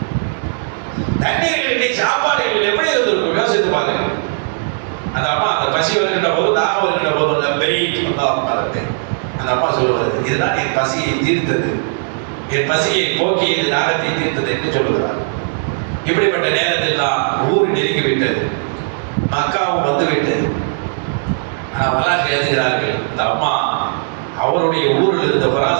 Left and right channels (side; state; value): left; silent; digital silence